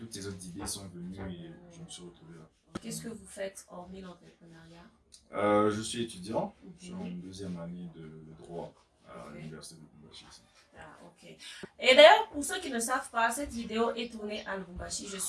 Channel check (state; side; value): identical; both; correlation 1.00